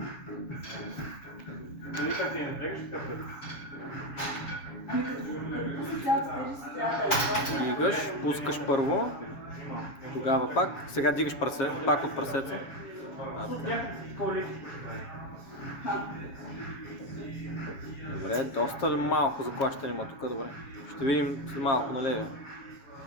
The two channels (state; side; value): late; right; 7.2 ms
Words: Дали как ти не напрягаш, така пред? Ами като пуснеш цялата тежест, трябва да е. Дигаш, пускаш първо, тогава пак, сега дигаш прасе, пак от прасеца. Добре, доста ли малко заклащане има тук, добре. Ще видим след малко на левия.